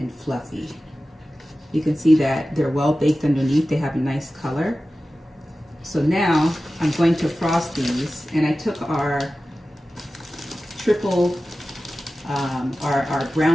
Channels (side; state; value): both; normal; correlation 0.95